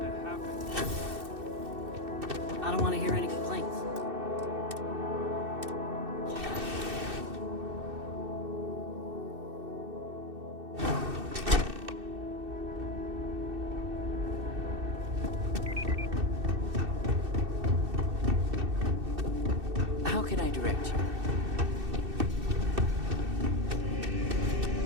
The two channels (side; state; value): left; late; 2.6 ms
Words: that happened. I don't want to hear any complaints. How can I direct you?